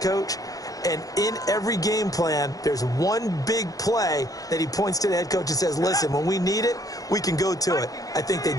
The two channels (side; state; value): right; late; 0.17 ms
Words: coach. And in every game plan, there's one big play that he points to the head coach and says, listen, when we need it, we can go to it. I think they